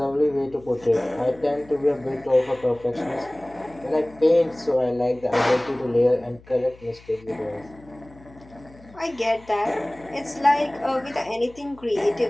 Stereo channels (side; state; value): left; noise; hum, 24 dB below the sound